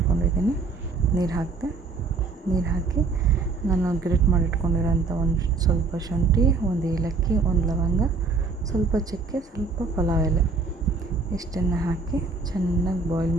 ನೀರು ಹಾಕಿ ನಾನು ಗ್ರೇಟ್ ಮಾಡಿಟ್ಕೊಂಡಿರೋಂಥ ಒಂದು ಸ್ವಲ್ಪ ಶುಂಠಿ, ಒಂದು ಏಲಕ್ಕಿ, ಒಂದು ಲವಂಗ, ಸ್ವಲ್ಪ ಚಕ್ಕೆ, ಸ್ವಲ್ಪ ಪಲಾವ್ ಎಲೆ ಇಷ್ಟನ್ನು ಹಾಕಿ ಚೆನ್ನಾಗಿ ಬಾಯ್ಲ್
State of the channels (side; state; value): left; quieter; 4.3 dB